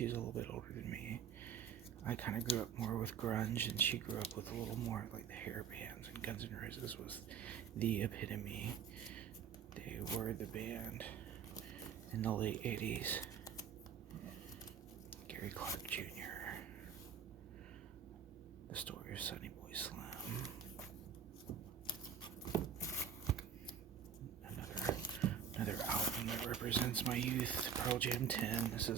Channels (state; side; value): quieter; left; 7.5 dB